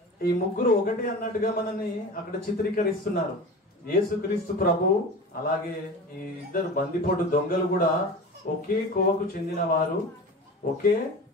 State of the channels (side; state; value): both; normal; correlation 0.33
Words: ఈ ముగ్గురు ఒకటి అన్నట్టుగా మనల్ని అక్కడ చిత్రీకరిస్తున్నారు. యేసుక్రీస్తు ప్రభు, అలాగే ఈ ఇద్దరు బందిపోటు దొంగలు కూడా ఒకే కోవకు చెందిన వారు, ఒకే